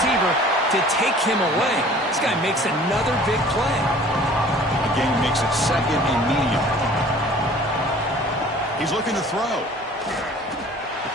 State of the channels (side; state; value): both; normal; correlation 0.49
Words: to take him away. This guy makes another big play. The game makes it 2nd and medium. He's looking to throw.